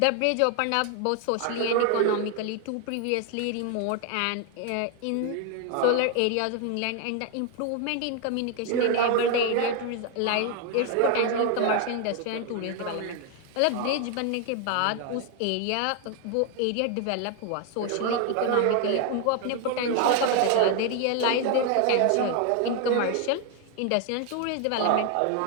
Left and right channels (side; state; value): both; different; correlation 0.01